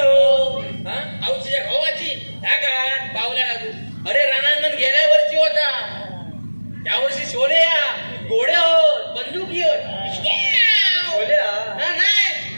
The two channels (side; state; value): both; inverted; correlation -1.00